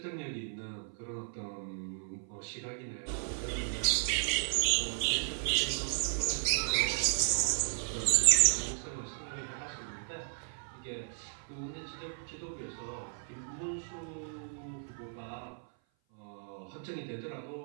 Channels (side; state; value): left; silent; 55 dB below the other